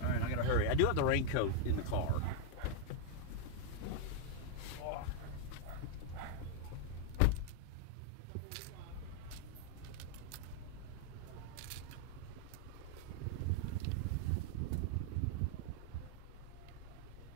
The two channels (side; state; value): both; different; correlation 0.00